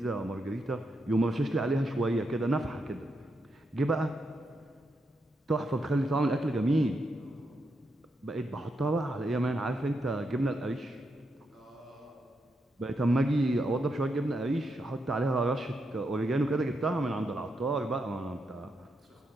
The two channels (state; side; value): normal; both; correlation 0.82